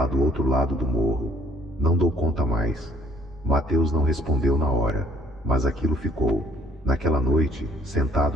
do outro lado do morro. Não dou conta mais. Mateus não respondeu na hora, mas aquilo ficou. Naquela noite,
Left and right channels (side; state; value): both; normal; correlation 0.58